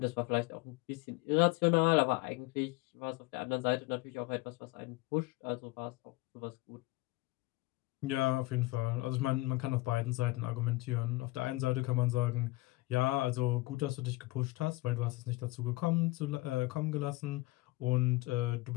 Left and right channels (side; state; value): right; quieter; 21.2 dB